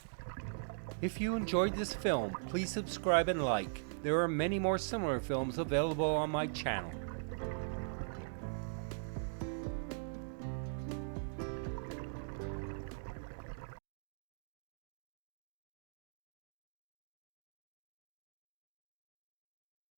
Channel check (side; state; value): left; silent; digital silence